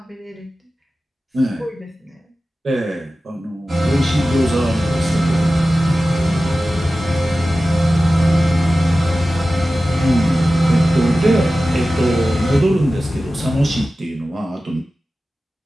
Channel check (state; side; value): normal; both; correlation 0.95